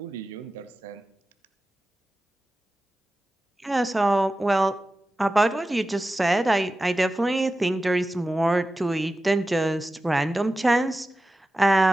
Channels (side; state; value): both; normal; correlation 0.94